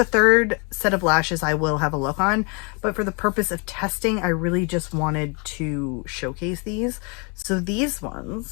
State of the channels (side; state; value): right; quieter; 33.4 dB